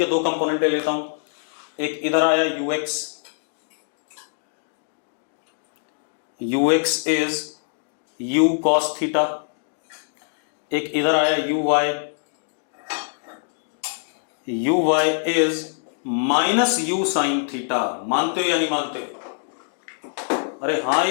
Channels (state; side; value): silent; right; digital silence